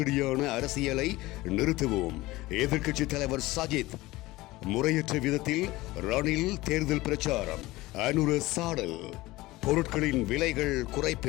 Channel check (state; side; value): quieter; right; 19.2 dB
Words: அரசியலை நிறுத்துவோம். எதிர்க்கட்சித் தலைவர் சஜித். முறையற்ற விதத்தில் ரணில் தேர்தல் பிரச்சாரம். அனுர சாடல். பொருட்களின் விலைகள்